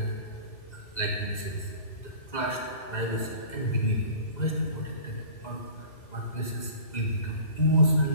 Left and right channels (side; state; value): right; late; 2.0 ms